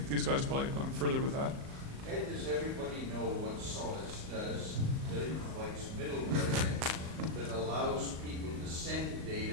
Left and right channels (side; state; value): left; late; 38 ms